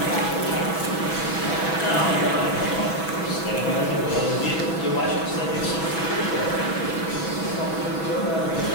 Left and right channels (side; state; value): right; late; 6.1 ms